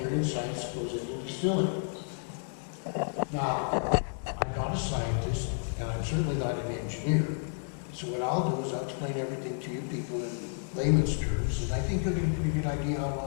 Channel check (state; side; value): silent; right; digital silence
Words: and science that goes into distilling. Now, I'm not a scientist, and I'm certainly not an engineer. So what I'll do is I'll explain everything to you people in layman's terms, and I think you'll get a pretty good idea how it